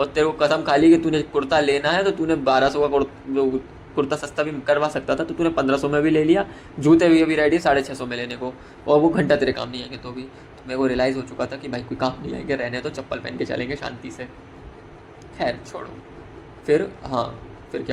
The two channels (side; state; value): both; identical; correlation 1.00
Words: तेरे को कसम खा ली कि तूने कुर्ता लेना है तो तूने 1200 का कुर्ता सस्ता भी करवा सकता था, तो तूने 1500 में भी ले लिया। जूते भी अभी रेडी 650 में लेने को, और वो घंटा तेरे काम नहीं आएंगे। तो भी तो मेरे को रियलाइज़ हो चुका था कि भाई कोई काम नहीं आएंगे, रहने तो चप्पल पहन के चलेंगे शांति से। खैर छोड़ो। फिर हाँ, फिर